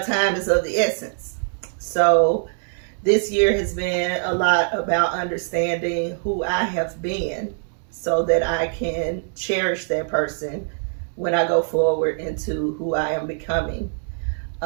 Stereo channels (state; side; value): silent; left; 63 dB below the other